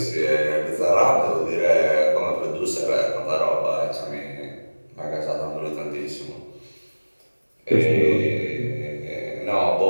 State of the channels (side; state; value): both; inverted; correlation -1.00